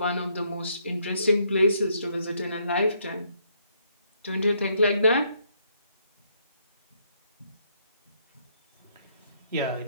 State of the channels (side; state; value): both; inverted; correlation -0.71